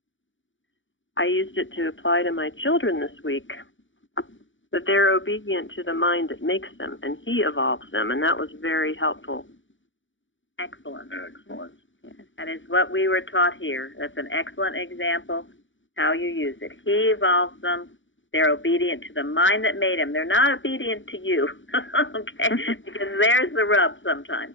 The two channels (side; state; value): right; late; 0.56 ms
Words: I used it to apply to my children this week, that they're obedient to the mind that makes them, and he evolves them, and that was very helpful. Excellent. Excellent. That is what we were taught here. That's an excellent example how you use it. He evolves them. They're obedient to the mind that made them. They're not obedient to you, okay? Because there's the rub